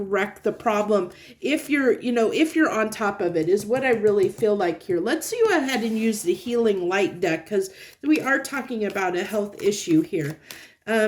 the problem if you're on top of it, is what I really feel like here. Let's go ahead and use the healing light deck, because we are talking about a health issue here.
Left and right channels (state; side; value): identical; both; correlation 1.00